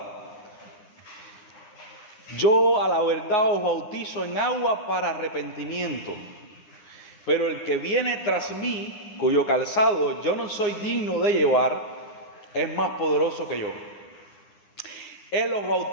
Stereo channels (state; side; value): late; right; 9.8 ms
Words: Yo a la verdad os bautizo en agua para arrepentimiento, pero el que viene tras mí, cuyo calzado yo no soy digno de llevar, es más poderoso que yo. Él os